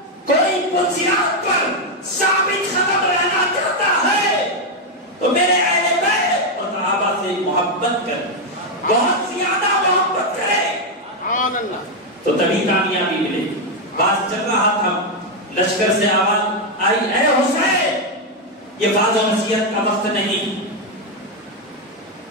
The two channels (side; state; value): both; normal; correlation 0.03